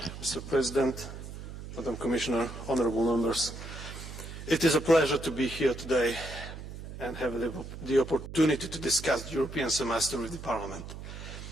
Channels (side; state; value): right; noise; hum, 11 dB below the sound